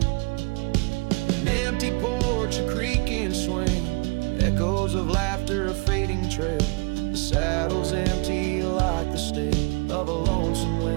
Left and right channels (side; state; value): left; quieter; 29.5 dB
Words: An empty porch, a creaking swing, echoes of laughter, a fading trail. The saddle's empty like the sting of a lonesome